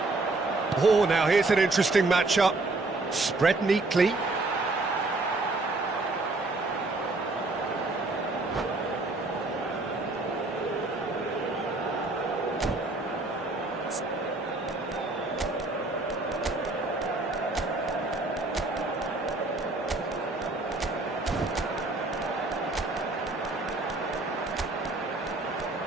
Oh, now here's an interesting matchup. Spread neatly.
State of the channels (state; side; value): quieter; left; 3.1 dB